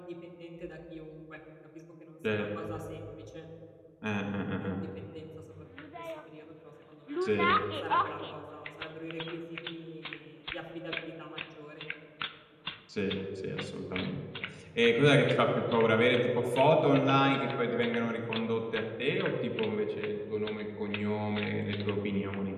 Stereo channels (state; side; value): identical; both; correlation 1.00